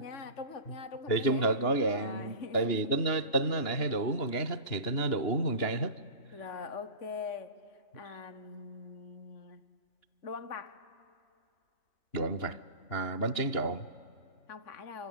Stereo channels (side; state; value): right; late; 2.9 ms